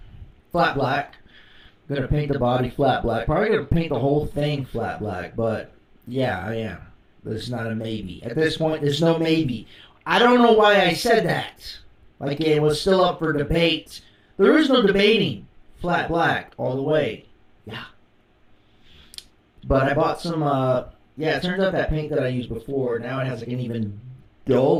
Flat black. Gonna paint the body flat black. Probably gonna paint the whole thing flat black, but yeah, I am. There's not a maybe. At this point, there's no maybe. I don't know why I said that. Like it was still up for debate. There is no debating. Flat black all the way. Yeah. But I bought some, it turns out that paint that I used before, now it has like an even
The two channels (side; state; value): both; identical; correlation 1.00